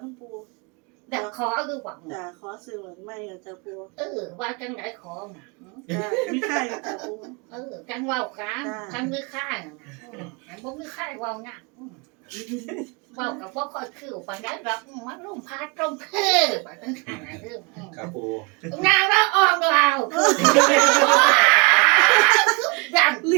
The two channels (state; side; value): quieter; left; 30.4 dB